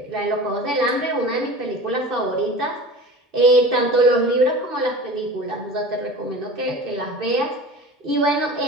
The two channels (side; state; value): both; normal; correlation 0.36